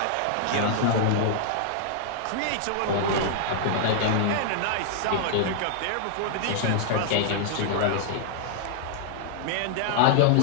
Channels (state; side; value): different; both; correlation -0.01